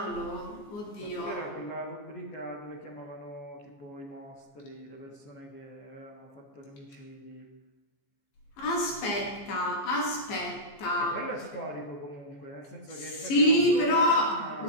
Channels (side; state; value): right; late; 14 ms